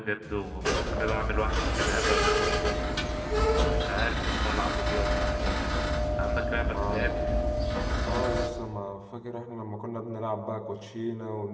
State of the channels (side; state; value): both; identical; correlation 1.00